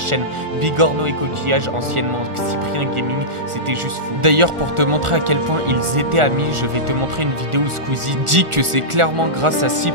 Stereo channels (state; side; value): late; left; 1.4 ms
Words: Bigorneau et Coquillage, anciennement Cyprien Gaming, c'était juste fou. D'ailleurs pour te montrer à quel point ils étaient amis, je vais te montrer une vidéo où Squeezie dit que c'est clairement grâce à